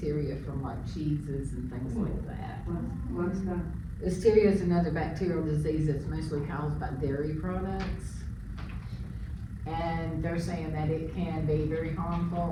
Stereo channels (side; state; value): both; identical; correlation 1.00